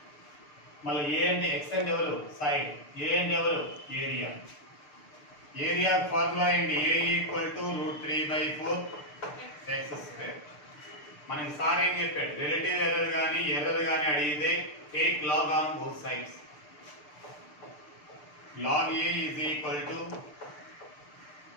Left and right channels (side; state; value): right; late; 6.7 ms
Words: మళ్ళీ ఏ అంటే x అంటే ఎవరు? సైడ్. ఏ అంటే ఎవరు? ఏరియా. ఏరియా ఫార్ములా ఏంటి? a equal to root 3 by 4 x square. మనకి సార్ ఏం చెప్పాడు? రిలేటివ్ ఎర్రర్ కానీ అడిగితే take log on both sides. Log a is equal to